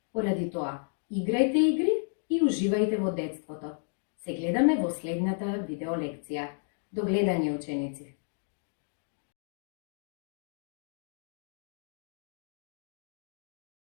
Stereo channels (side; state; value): right; silent; digital silence